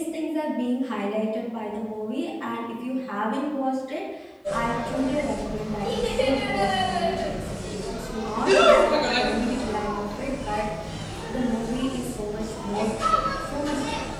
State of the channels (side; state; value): both; identical; correlation 1.00